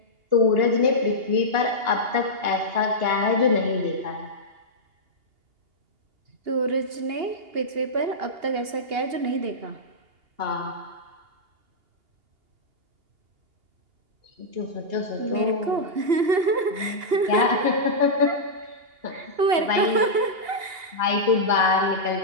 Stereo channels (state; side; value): late; left; 2.8 ms